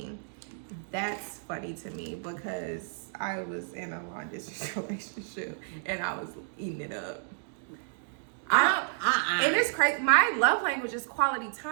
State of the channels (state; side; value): silent; left; digital silence